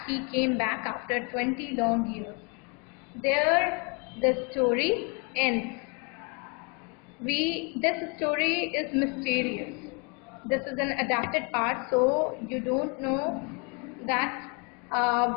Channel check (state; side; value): quieter; right; 33.0 dB